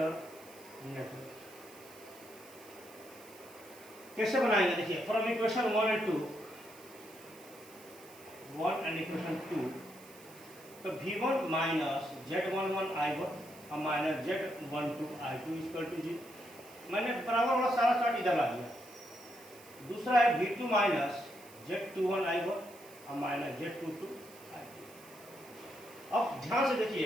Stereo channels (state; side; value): noise; right; hiss, 21 dB below the sound